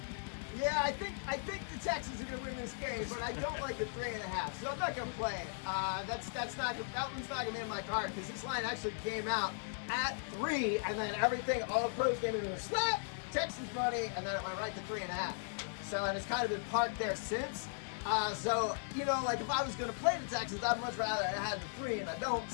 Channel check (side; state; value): right; silent; digital silence